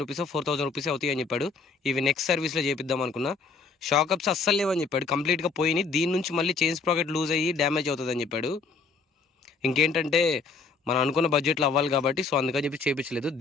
రూపీస్ 4000 రూపీస్ అవుతాయి అని చెప్పాడు. ఇవి నెక్స్ట్ సర్వీస్లో చేపిద్దాం అనుకున్నా. షాకప్స్ అస్సలు లేవని చెప్పాడు, కంప్లీట్గా పోయినాయి. దీని నుంచి మళ్ళీ చైన్ స్ప్రాకెట్ లూజ్ అయ్యి డ్యామేజ్ అవుతుంది అని చెప్పాడు. ఇంకేంటంటే మనం అనుకున్న బడ్జెట్లో అవ్వాలి కాబట్టి సో అందుకని చెప్పి చేయించలేదు.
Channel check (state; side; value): quieter; right; 4.5 dB